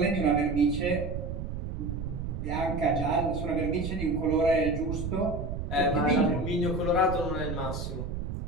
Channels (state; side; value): noise; right; rumble, 5 dB below the sound